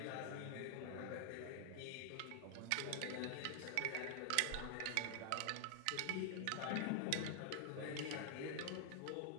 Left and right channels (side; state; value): both; different; correlation 0.00